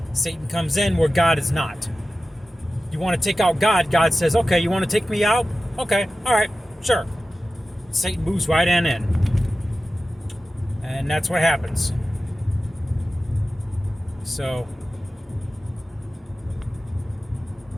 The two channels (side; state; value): both; normal; correlation 0.95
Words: Satan comes in where God is not. You want to take out God, God says, okay, you want to take me out? Okay, all right, sure. Satan moves right in. And that's what happens. So,